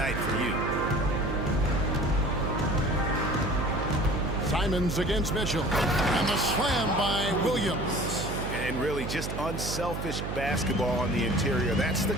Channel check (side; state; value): right; noise; hum, 5 dB below the sound